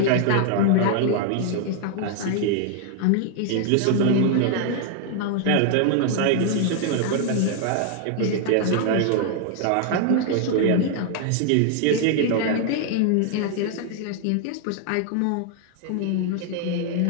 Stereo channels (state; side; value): different; both; correlation 0.00